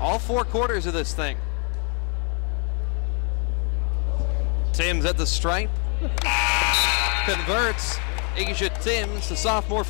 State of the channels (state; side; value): quieter; right; 36.7 dB